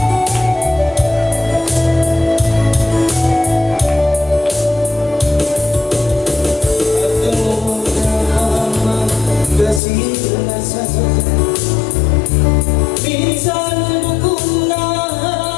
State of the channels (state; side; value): drops out; right; at 9.8 s